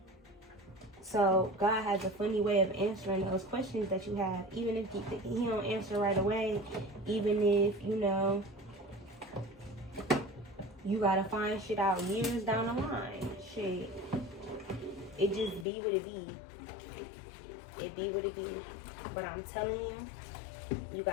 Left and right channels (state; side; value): drops out; right; at 15.7 s